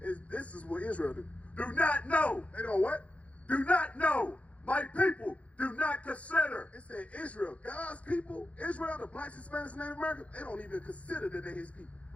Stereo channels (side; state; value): right; late; 0.065 ms